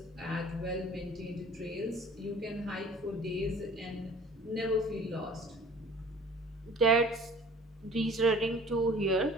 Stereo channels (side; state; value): both; normal; correlation 0.48